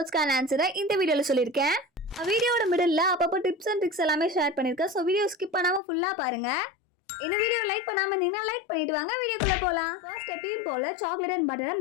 ஆன்சரை இந்த வீடியோவில் சொல்லியிருக்கேன். வீடியோட மிடில் அப்பப்போ டிப்ஸ் அண்ட் ட்ரிக்ஸ் எல்லாமே ஷேர் பண்ணியிருக்கேன். ஸோ வீடியோ ஸ்கிப் பண்ணாமல் ஃபுல்லாக பாருங்கள். இந்த வீடியோ லைக் பண்ணாமல் இருந்தீங்கன்னா லைக் பண்ணிட்டு வாங்க, வீடியோக்குள்ளே போகலாம். ஃபர்ஸ்ட் எப்பயும் போல் சாக்லேட் அண்ட் பட்டரை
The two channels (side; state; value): right; drops out; at 5.8 s